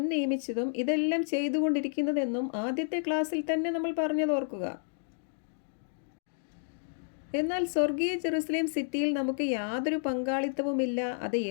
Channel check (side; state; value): right; silent; digital silence